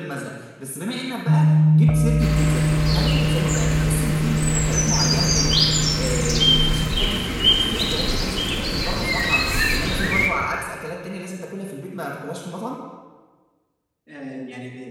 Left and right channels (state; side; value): identical; both; correlation 1.00